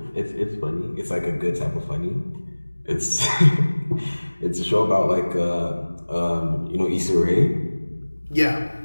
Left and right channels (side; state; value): both; inverted; correlation -1.00